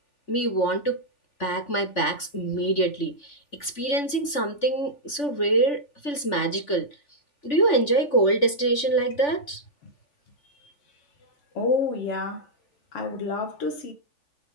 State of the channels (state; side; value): late; right; 3.4 ms